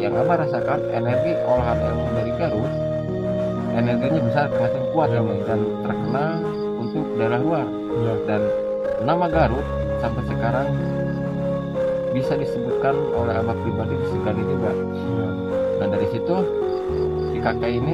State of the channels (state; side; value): identical; both; correlation 1.00